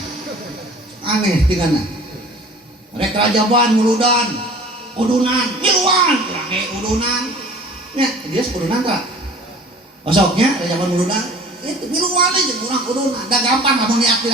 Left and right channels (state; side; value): normal; both; correlation 0.45